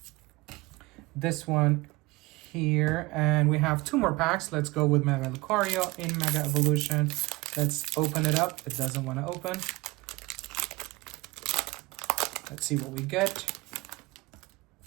this one here, and we have 2 more packs. Let's go with Mega Lucario in Mega Evolution. Let's open it up. It doesn't want to open. Let's see what we get.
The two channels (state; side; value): quieter; left; 22.4 dB